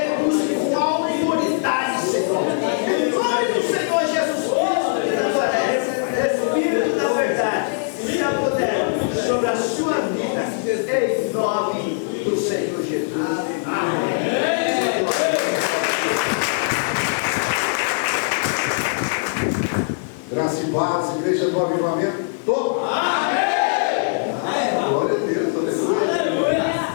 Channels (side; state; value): right; silent; digital silence